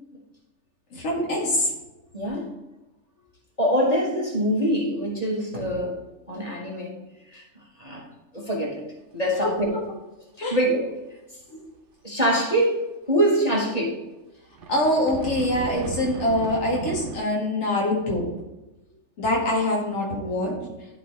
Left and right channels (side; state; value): right; late; 3.4 ms